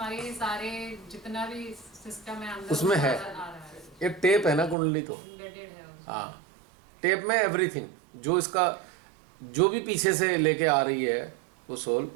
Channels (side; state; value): left; drops out; at 4.8 s